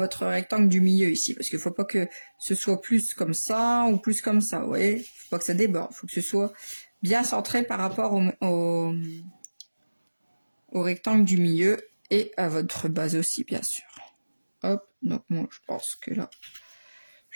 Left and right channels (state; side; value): inverted; both; correlation -1.00